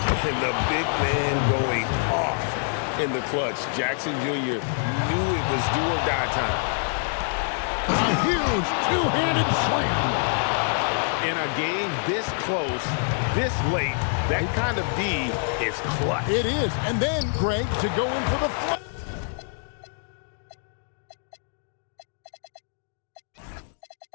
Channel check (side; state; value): right; silent; 61 dB below the other